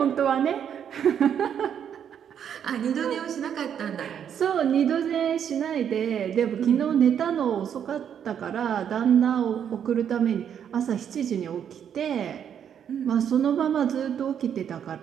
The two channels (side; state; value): left; quieter; 8.6 dB